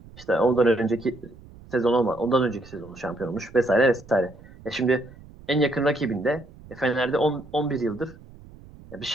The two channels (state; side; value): noise; right; rumble, 21 dB below the sound